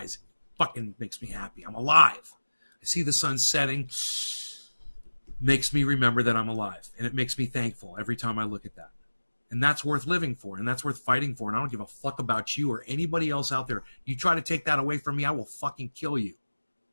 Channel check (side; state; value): both; inverted; correlation -1.00